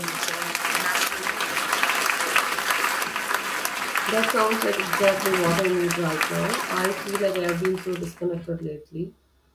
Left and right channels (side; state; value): both; identical; correlation 1.00